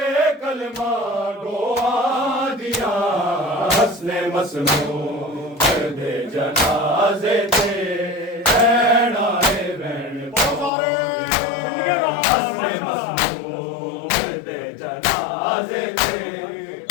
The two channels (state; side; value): drops out; right; at 10.7 s